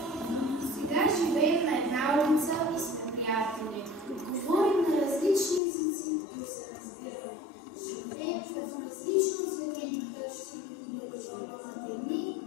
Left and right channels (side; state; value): right; drops out; at 5.6 s